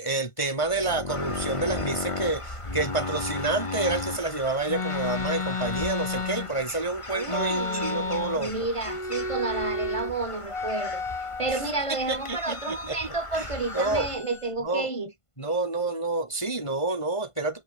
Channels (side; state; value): right; late; 1.5 ms